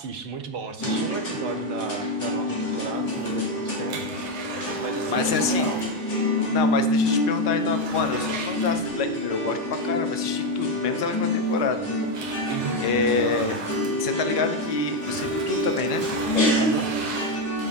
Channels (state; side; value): late; left; 4.4 ms